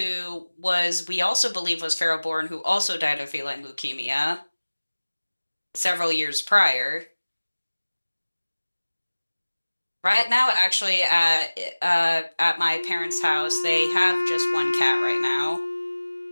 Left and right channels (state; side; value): inverted; both; correlation -1.00